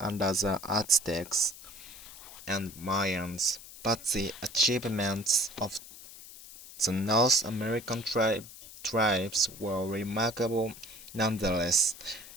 under the Aztecs and Mayans, but the achievements of the North American tribes were remarkable nonetheless.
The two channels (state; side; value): noise; left; hiss, 16 dB below the sound